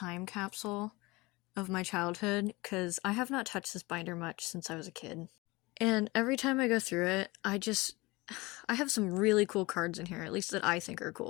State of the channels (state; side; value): quieter; right; 22.8 dB